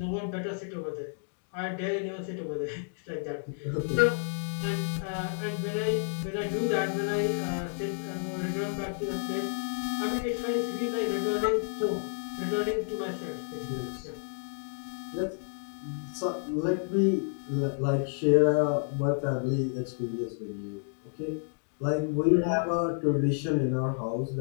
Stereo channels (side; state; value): right; silent; digital silence